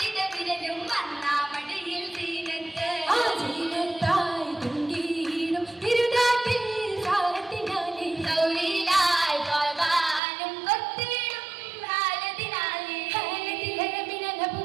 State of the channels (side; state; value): left; drops out; at 10.2 s